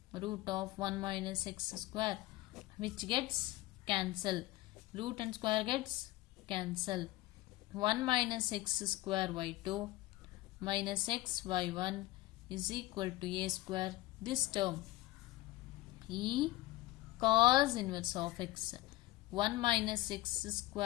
root of 1 minus x square, which gets cancelled. Root and square gets cancelled. 1 minus x square y2 minus x y1 is equal to a square. This term e cos inverse of x. 1 minus x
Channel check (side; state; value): right; quieter; 18.0 dB